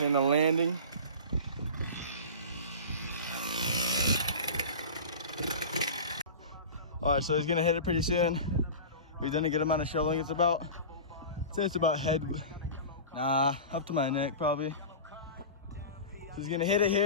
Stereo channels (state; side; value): inverted; both; correlation -0.33